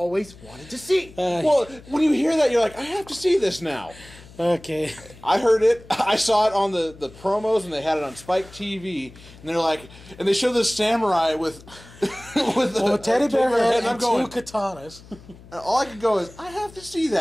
wanted to see. Well, when you hear that, you're like, I have to see this now. Okay. I heard it. I saw it on the promos, and they had it on Spike TV. And they're like, and they show this samurai with with Well, a teddy bear head and I'm and going. two katanas. And all I could go is, I have to see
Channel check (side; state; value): left; noise; hum, 21 dB below the sound